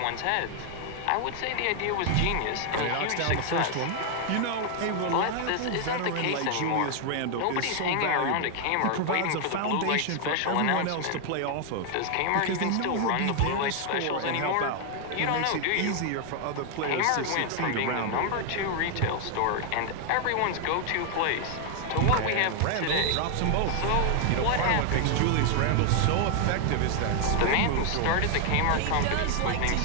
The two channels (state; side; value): different; both; correlation 0.00